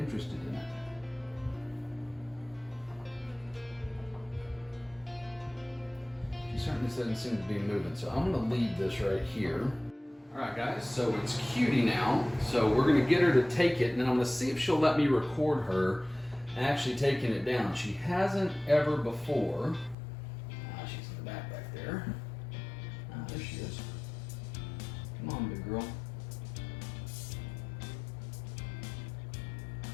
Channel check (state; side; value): drops out; right; at 20.0 s